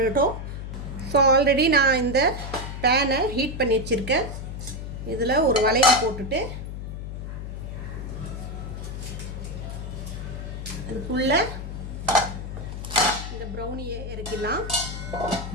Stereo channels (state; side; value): noise; left; hum, 7 dB below the sound